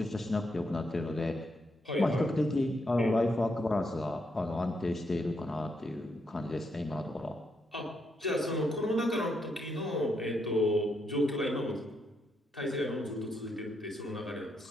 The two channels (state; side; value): normal; both; correlation 0.79